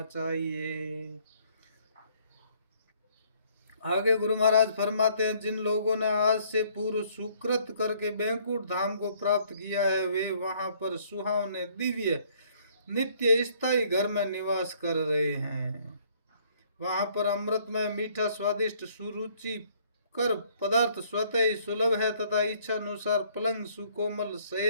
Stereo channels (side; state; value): both; inverted; correlation -0.63